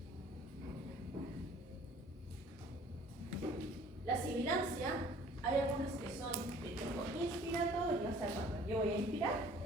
La sibilancia, hay algunas que son de tipo inspiratorio, o sea, cuando yo voy a inspirar,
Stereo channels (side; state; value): both; normal; correlation 0.52